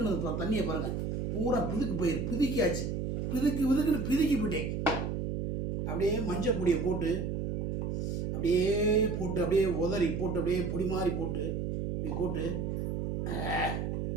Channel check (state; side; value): noise; right; hum, 2 dB below the sound